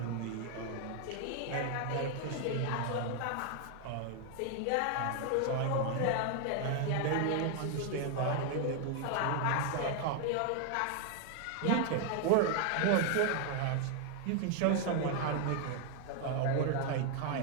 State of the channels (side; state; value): both; different; correlation 0.00